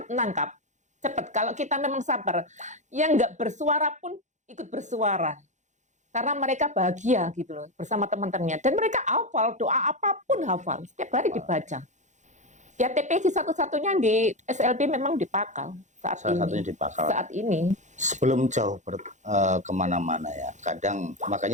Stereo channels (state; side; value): late; left; 0.35 ms